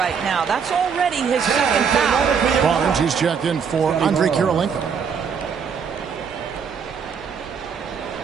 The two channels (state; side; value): quieter; left; 6.6 dB